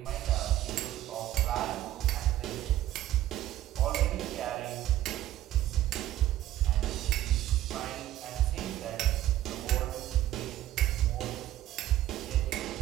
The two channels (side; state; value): left; quieter; 13.8 dB